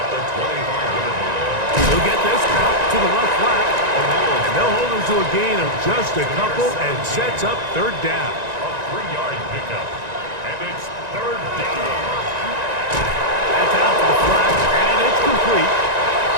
the 25-yard line. He'll get this out to the left flat. And they'll hold him to a gain of just a couple and sets up 3rd down. A 3-yard pickup. And it's 3rd down. That's out to the flat, and it's complete.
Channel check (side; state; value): left; late; 1.9 ms